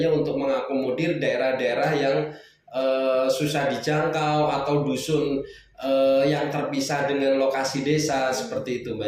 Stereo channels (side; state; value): both; identical; correlation 1.00